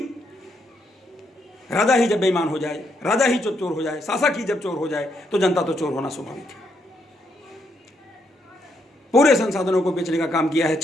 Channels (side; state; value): both; normal; correlation 0.76